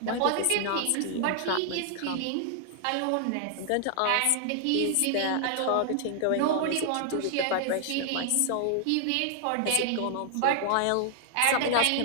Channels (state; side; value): different; both; correlation 0.00